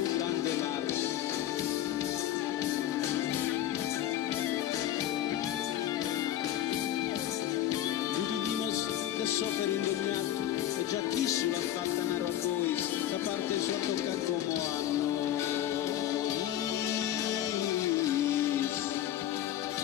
grande mare. Que super indemniato e già chi sulla fatta nero a voi da parte sua tocca come a noi.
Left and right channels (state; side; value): quieter; right; 12.2 dB